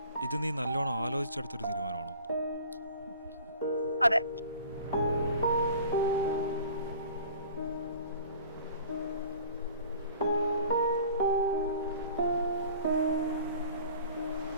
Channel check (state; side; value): inverted; both; correlation -0.46